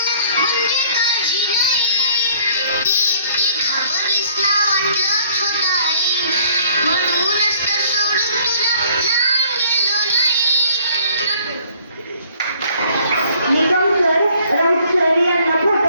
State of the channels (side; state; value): both; inverted; correlation -0.58